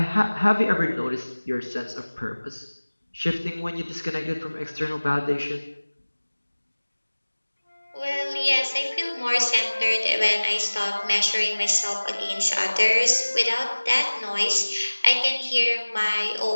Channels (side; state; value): both; inverted; correlation -1.00